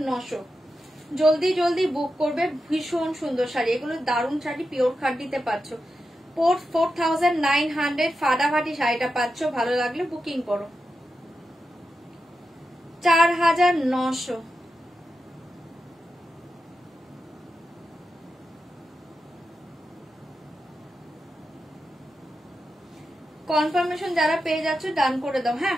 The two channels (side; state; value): both; normal; correlation 0.89